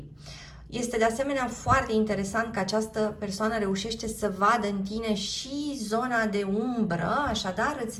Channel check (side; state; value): both; identical; correlation 1.00